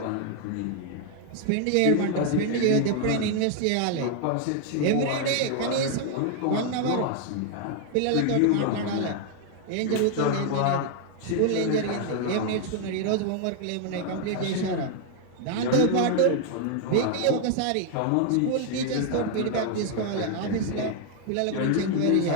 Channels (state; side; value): different; both; correlation 0.00